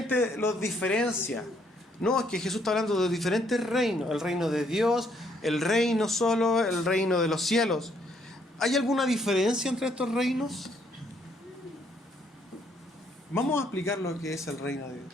los diferencia. No, es que Jesús está hablando de diferentes reinos: el reino de Dios, el reino solo, el reino de los cielos. ¿Hay alguna diferencia entre estos reinos? Vamos a explicar lo que es el reino de Dios.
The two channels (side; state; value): both; normal; correlation 0.69